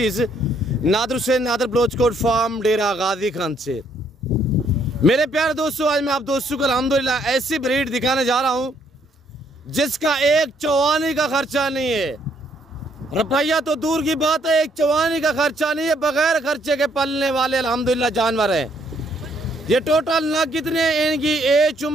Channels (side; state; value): both; normal; correlation 0.69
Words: नादर हुसैन नादर बलोचकोट फार्म डेरा गाजी खान से। मेरे प्यारे दोस्तों, आज मैं आप दोस्तों को अल्हम्दुलिल्लाह ऐसी ब्रीड दिखाने जा रहा हूँ जिसका एक चवानी का खर्चा नहीं है। रुपया तो दूर की बात है, एक चवानी का खर्चा नहीं है। बगैर खर्चे के पलने वाले अल्हम्दुलिल्लाह जानवर हैं। ये टोटल नग कितने हैं, इनकी एज,